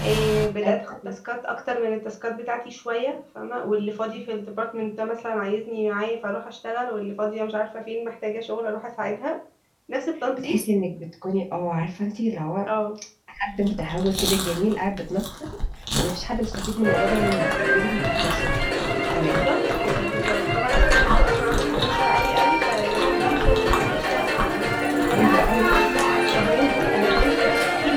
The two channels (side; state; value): both; identical; correlation 1.00